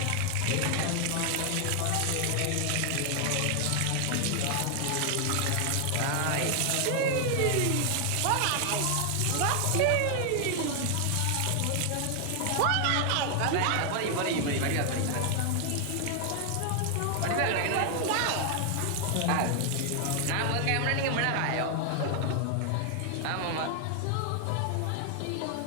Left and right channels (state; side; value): different; both; correlation 0.00